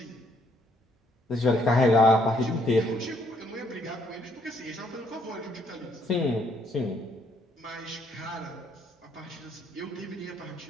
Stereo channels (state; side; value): normal; both; correlation 0.68